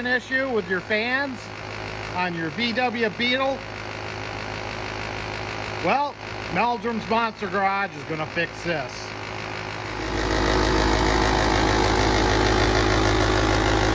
issue with your fans on your VW Beetle? Well, Meldrum's Monster Garage is going to fix this.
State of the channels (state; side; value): identical; both; correlation 1.00